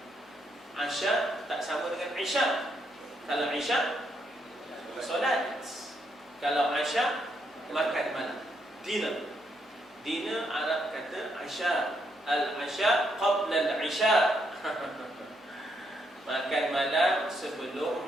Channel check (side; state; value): both; normal; correlation 0.76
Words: 'Asha tak sama dengan 'isha. Kalau isya, solat. Kalau asya, makan malam. Dinner. Dinner Arab kata asya. Al-asya qabla al-isya. Makan malam sebelum